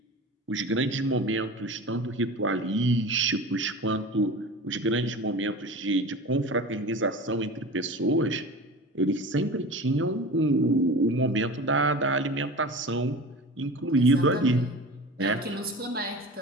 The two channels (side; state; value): both; normal; correlation 0.34